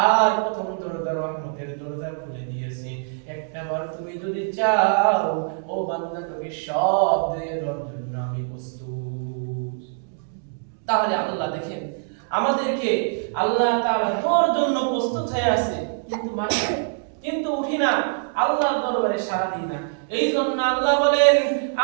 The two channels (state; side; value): silent; left; digital silence